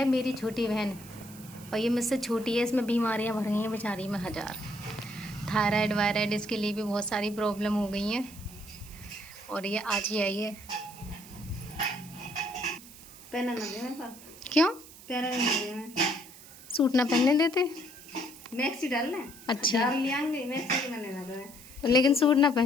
मेरी छोटी बहन, और ये मुझसे छोटी है, इसमें बीमारियां भर गई हैं बेचारी में हजार। थायराइड वायराइड इसके लिए भी बहुत सारी प्रॉब्लम हो गई हैं, और ये आज ही आई है। पहना ना दे मेरे पास। क्यों? पहना नहीं दे मैं। सूट ना पहनने देते? मैक्सी डालना है। अच्छा। डाल लियांगे मैक्सी मैंने ना दे। लेकिन सूट ना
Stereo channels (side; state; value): right; noise; hiss, 18 dB below the sound